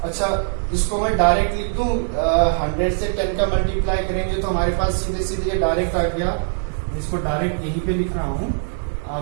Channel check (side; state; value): left; silent; digital silence